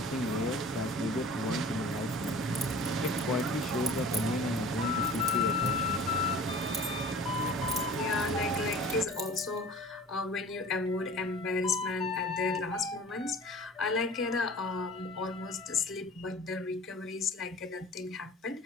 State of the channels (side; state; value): both; normal; correlation 0.43